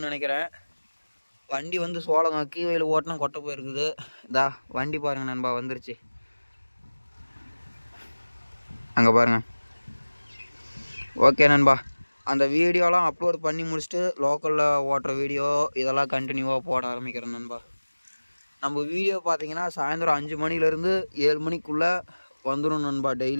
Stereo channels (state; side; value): inverted; both; correlation -1.00